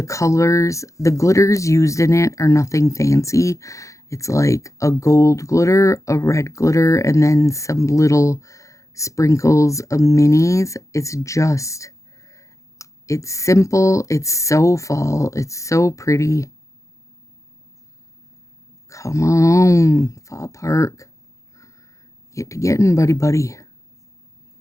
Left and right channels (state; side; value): late; right; 0.15 ms